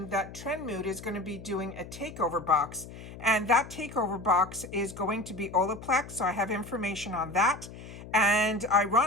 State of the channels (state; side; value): noise; left; hum, 14 dB below the sound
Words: that Trendmood is going to be doing a takeover box. And that takeover box is going to be Olaplex. So I have information on that. And